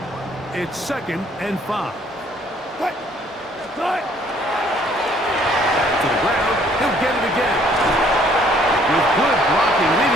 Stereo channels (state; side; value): normal; both; correlation 0.62